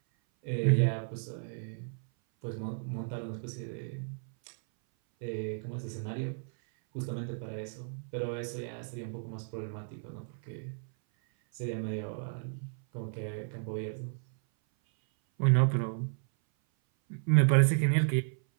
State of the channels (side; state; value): left; silent; 56 dB below the other